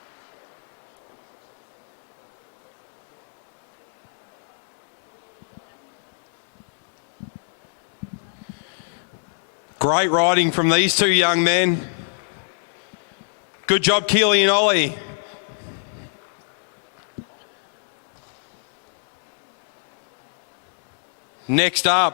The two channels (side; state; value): right; silent; 62 dB below the other